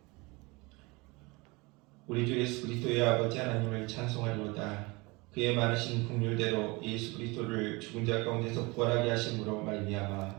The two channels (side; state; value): left; quieter; 25.4 dB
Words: 우리 주 예수 그리스도의 아버지 하나님을 찬송하리로다. 그의 많으신 긍휼대로 예수 그리스도를 죽은 자 가운데서 부활하게 하심으로 말미암아